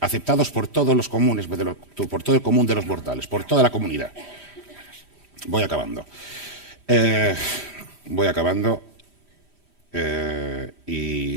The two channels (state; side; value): late; left; 5.0 ms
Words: aceptados por todos los comunes, por todo el común de los mortales, por toda la comunidad. Voy acabando.